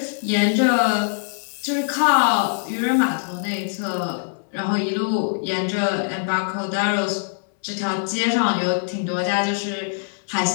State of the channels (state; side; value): silent; right; 62 dB below the other